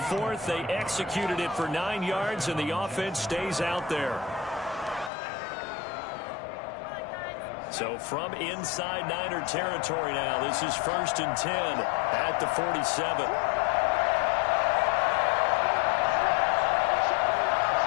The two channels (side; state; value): right; drops out; at 5.1 s